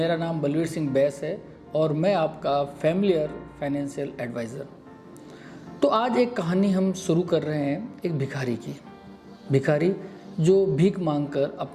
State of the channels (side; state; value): both; identical; correlation 1.00